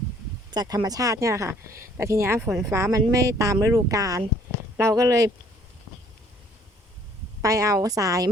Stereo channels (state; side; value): normal; both; correlation 0.59